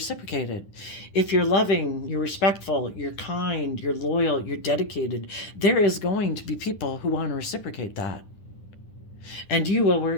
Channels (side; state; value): right; late; 10 ms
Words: it. If you're loving, you're respectful, you're kind, you're loyal, you're dedicated, there is going to be people who want to reciprocate that. And you will